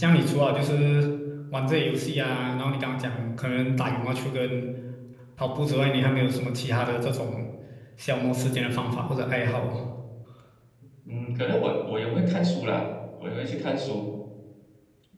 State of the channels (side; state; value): both; identical; correlation 1.00